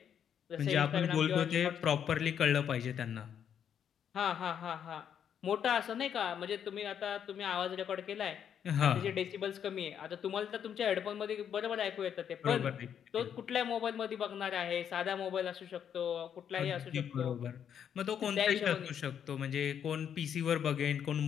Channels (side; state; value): right; quieter; 8.6 dB